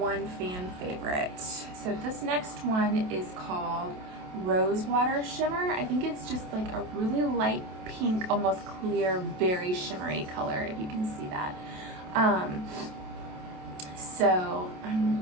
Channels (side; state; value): left; late; 28 ms